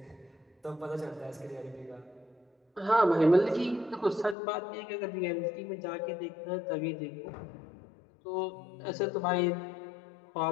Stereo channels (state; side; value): drops out; right; at 4.4 s